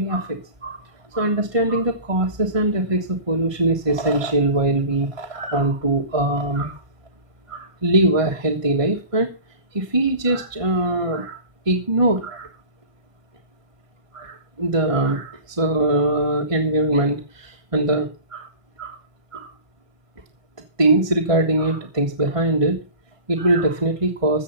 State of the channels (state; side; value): late; left; 1.2 ms